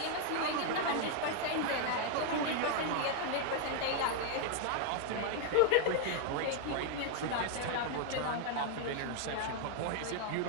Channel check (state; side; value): different; both; correlation 0.00